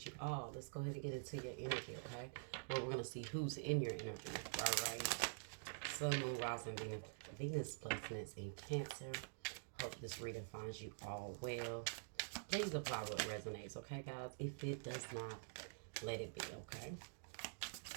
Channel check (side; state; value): left; silent; digital silence